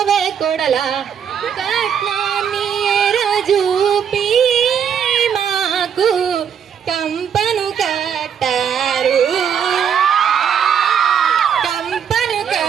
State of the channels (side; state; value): left; quieter; 7.9 dB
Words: కోడలా కట్నాన్ని రాజూపి మాకు కంపను కట్టారు కంపను